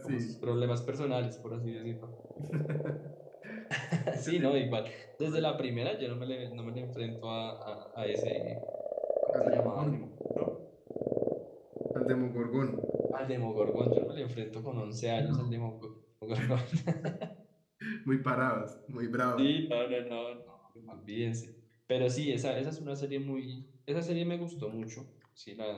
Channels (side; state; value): both; identical; correlation 1.00